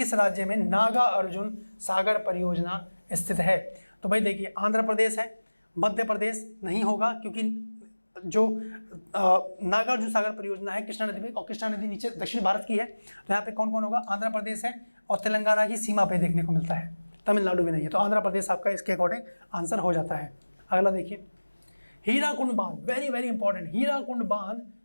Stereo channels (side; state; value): both; inverted; correlation -1.00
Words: राज्य में नागा अर्जुन सागर परियोजना स्थित है? तो भाई देखिए, आंध्र प्रदेश है, मध्य प्रदेश नहीं होगा क्योंकि जो नागार्जुन सागर परियोजना है कृष्णा नदी में, और कृष्णा नदी नीचे दक्षिण भारत की है। तो यहाँ पे कौन कौन होगा? आंध्र प्रदेश है, और तेलंगाना की सीमा पे देखने को मिलता है, तमिलनाडु भी नहीं है। तो आंध्र प्रदेश आपका इसके अकॉर्डिंग आंसर हो जाता है। अगला देखिए, हीराकुंड बांध, वेरी वेरी इंपॉर्टेंट। हीराकुंड बांध